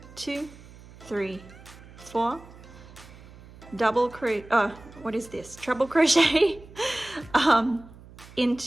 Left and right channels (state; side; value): noise; right; hum, 20 dB below the sound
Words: 2, 3, 4, double crochet, what is this? Treble crochet